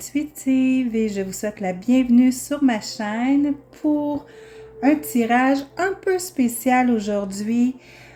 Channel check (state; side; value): identical; both; correlation 1.00